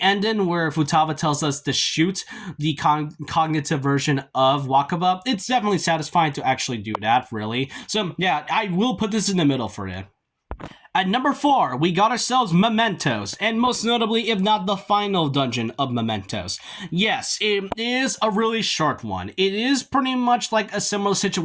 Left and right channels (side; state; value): both; identical; correlation 1.00